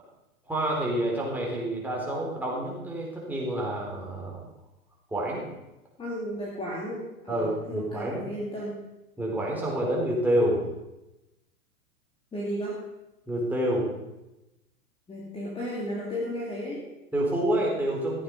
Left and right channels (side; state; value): both; normal; correlation 0.60